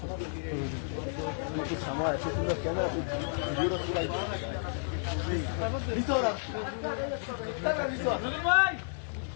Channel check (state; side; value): silent; right; digital silence